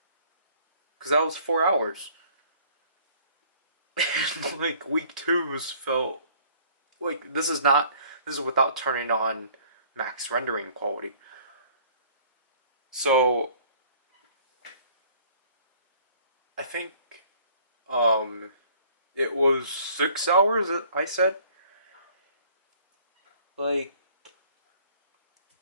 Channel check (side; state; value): both; inverted; correlation -0.56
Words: because that was 4 hours. Like week two's felt like this is without turning on max rendering quality. So I think it was 6 hours I said. Like